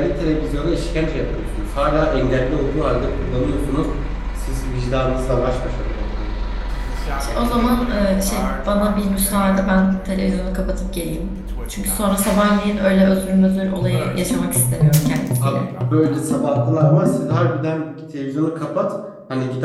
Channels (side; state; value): both; identical; correlation 1.00